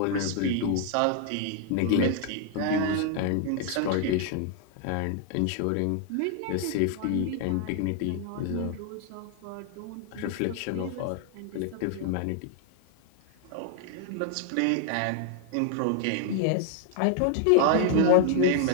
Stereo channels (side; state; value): both; different; correlation 0.00